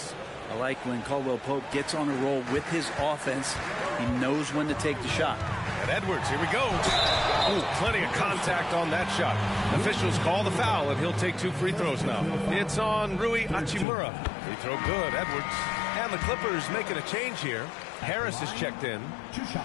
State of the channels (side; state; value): right; drops out; at 13.9 s